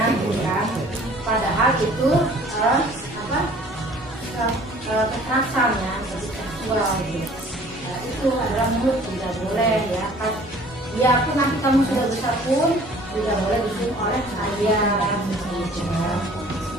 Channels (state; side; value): normal; both; correlation 0.52